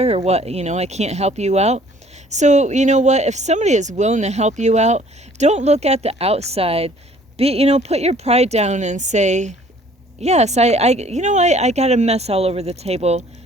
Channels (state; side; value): normal; both; correlation 0.56